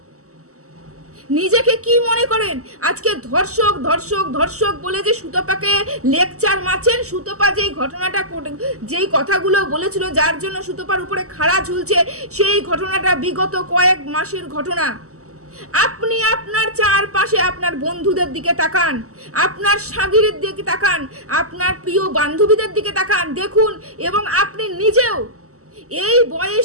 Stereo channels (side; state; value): left; late; 0.65 ms